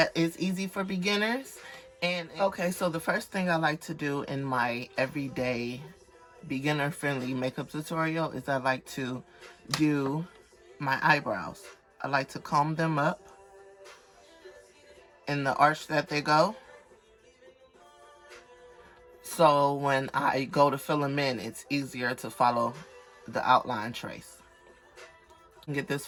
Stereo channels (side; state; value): both; identical; correlation 1.00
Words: is easy for beginners. And okay, so the first thing I like to do in my everyday beginner-friendly makeup tutorial is I like to do my eyebrows. I like to comb them up in the arch that they go. So when I go to fill them in, it's easier to follow the outline trace. You can get this